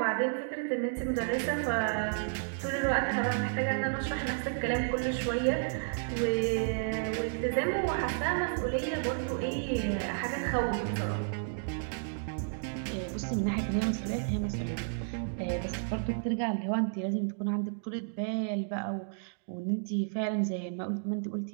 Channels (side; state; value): left; silent; digital silence